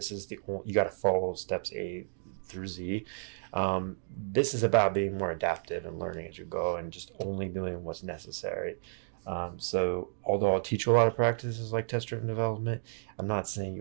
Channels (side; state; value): left; silent; digital silence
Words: is you got to follow steps A through Z. This is about being more adaptive and learning as you go and just only doing what's necessary. So although I'll teach you a lot of practices like test-driven development, I'm not saying